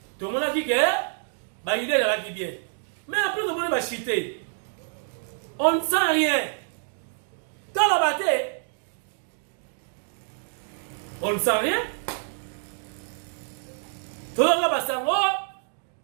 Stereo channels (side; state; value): left; silent; 60 dB below the other